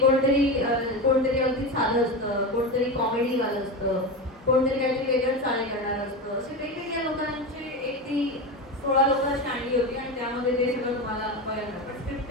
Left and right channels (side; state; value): both; normal; correlation 0.21